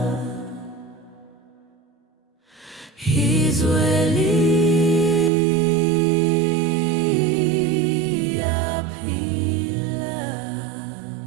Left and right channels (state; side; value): drops out; left; at 5.3 s